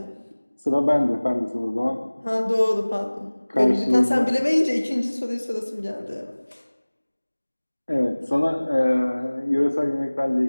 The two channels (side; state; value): both; inverted; correlation -1.00